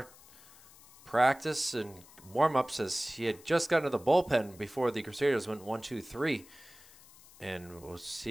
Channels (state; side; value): noise; left; hiss, 23 dB below the sound